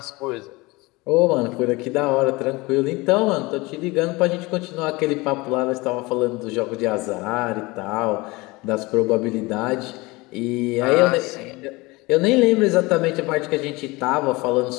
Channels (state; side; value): quieter; right; 23.0 dB